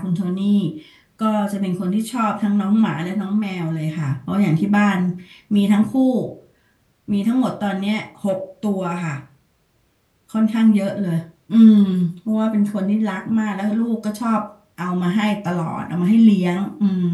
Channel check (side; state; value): both; identical; correlation 1.00